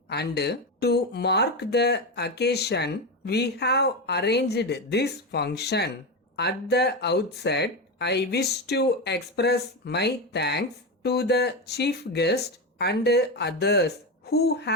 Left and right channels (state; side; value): normal; both; correlation 0.16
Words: and to mark the occasion, we have arranged this function. At the outset, I wish to express my thanks to the chief guest and others who